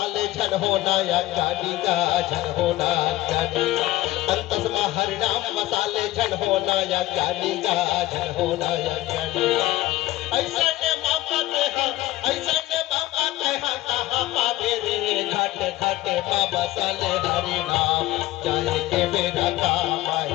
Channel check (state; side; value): quieter; right; 16.7 dB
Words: झन होना या ज्ञानी का झन होना ज्ञानी। अंतस्मा हरि नाम मसाले झन होना या ज्ञानी का झन होना या ज्ञानी। ऐसा ने मौका कहाँ पावे रे घाटे घाटे माँ बसाले हरि नाम जाए के मेरा काम